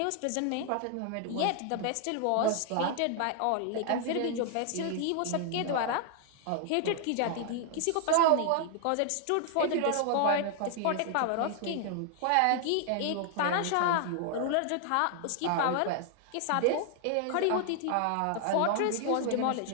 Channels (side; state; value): both; different; correlation 0.00